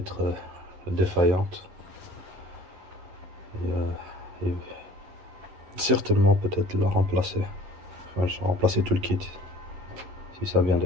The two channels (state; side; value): late; left; 11 ms